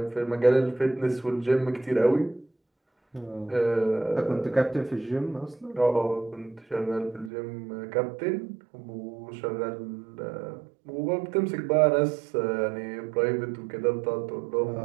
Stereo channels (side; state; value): left; drops out; at 7.3 s